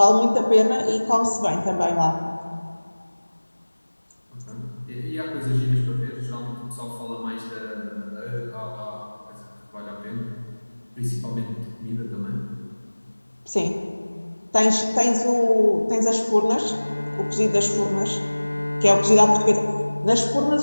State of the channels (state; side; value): inverted; both; correlation -1.00